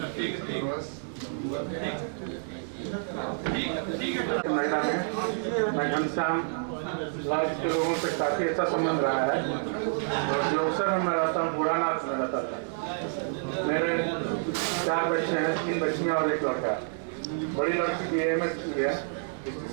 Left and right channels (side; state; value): left; silent; digital silence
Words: महिला में मैं घनश्याम लाल के लोगों से काफी अच्छा संबंध रहा है, और जो अवसर में मैं रहता हूँ बुढ़ानाथ में रहता था। मेरे 4 बच्चे हैं, 3 बच्चियाँ और 1 लड़का। बड़ी लड़की भी MS की है, इसकी